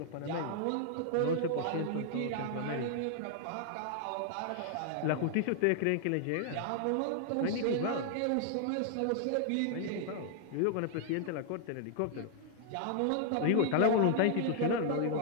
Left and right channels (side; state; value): both; different; correlation -0.01